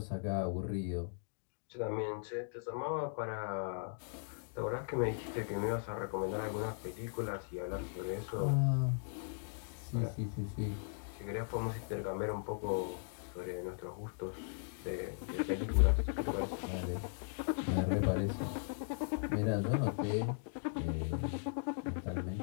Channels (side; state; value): right; silent; digital silence